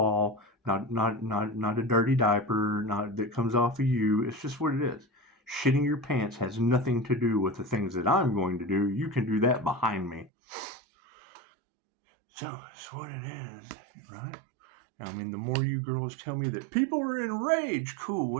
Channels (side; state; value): left; drops out; at 10.3 s